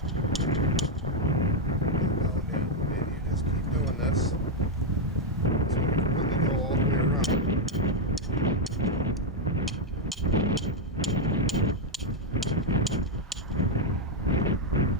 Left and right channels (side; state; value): both; normal; correlation 0.01